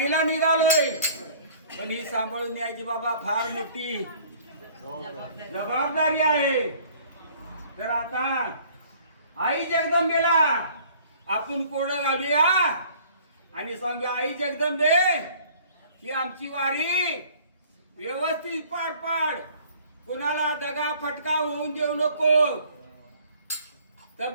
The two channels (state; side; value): inverted; both; correlation -0.53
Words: निघालोय. पण ही सांभाळून न्यायची बाबा फार मोठी जबाबदारी आहे. तर आता आई जगदंबेला आपण कोडं घालूया आणि सांगूया, आई जगदंबे ही आमची वारी व्यवस्थित पार पाड. कुणाला दगा फटका होऊन देऊ नको.